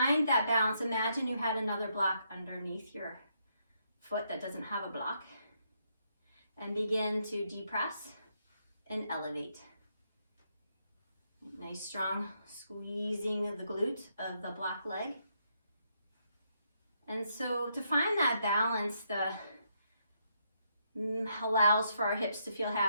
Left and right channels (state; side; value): inverted; both; correlation -0.76